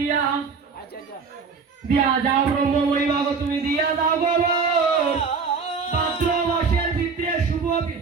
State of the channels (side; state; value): left; quieter; 5.2 dB